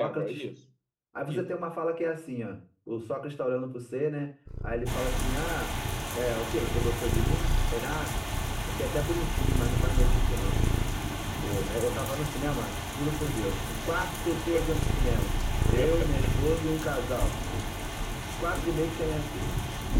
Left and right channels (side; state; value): both; identical; correlation 1.00